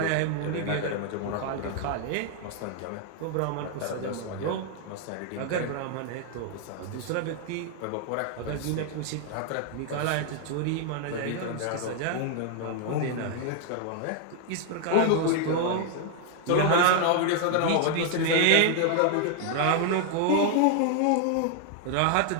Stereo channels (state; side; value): different; both; correlation 0.00